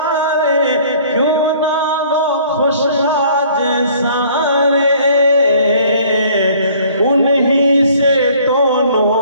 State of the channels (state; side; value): inverted; both; correlation -0.55